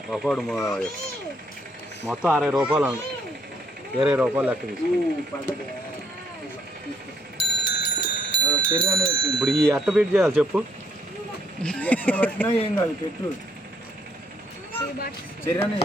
ఒకడు మొత్తం 60 రూపాయలు, 20 రూపాయలు లెక్క తీసుకుంది. ఇప్పుడు ఈ అట్ట పెట్టి చేయాలి చెప్పు. ఏం కాదు పెట్టు.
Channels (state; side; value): normal; both; correlation 0.72